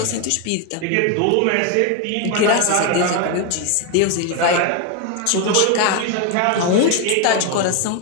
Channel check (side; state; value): both; different; correlation 0.01